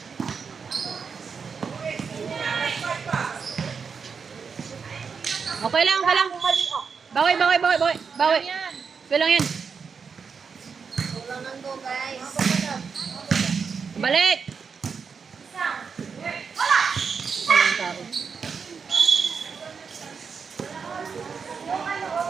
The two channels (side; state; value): left; quieter; 5.8 dB